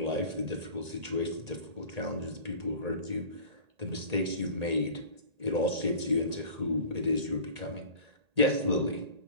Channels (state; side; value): late; left; 1.8 ms